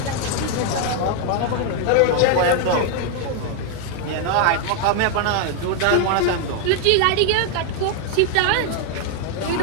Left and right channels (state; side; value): different; both; correlation 0.00